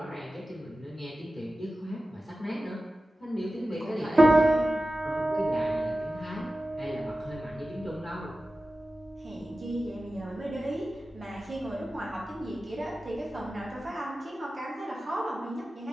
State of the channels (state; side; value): normal; both; correlation 0.95